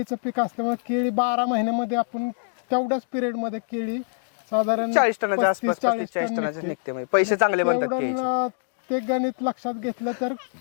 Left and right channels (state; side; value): silent; right; digital silence